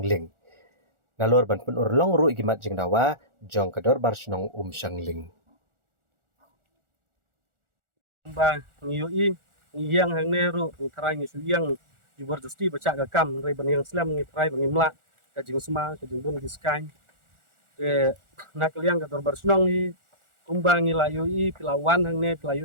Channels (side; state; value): left; late; 1.4 ms